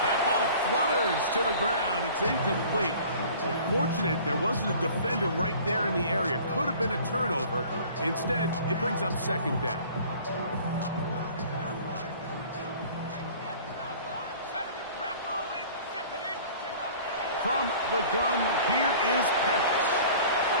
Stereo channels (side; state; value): both; inverted; correlation -0.47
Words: That ball flutters to the ground. It's incomplete. Well, fortunate there wasn't a defender right there in the area. Could have been a turnover. Instead, it brings up 2nd down. From the gun, here is Penix.